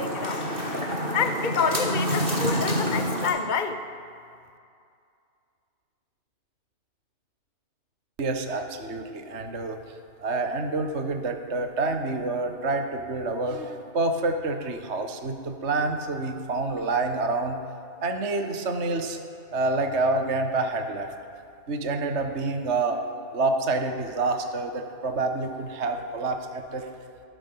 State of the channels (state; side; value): late; left; 2.6 ms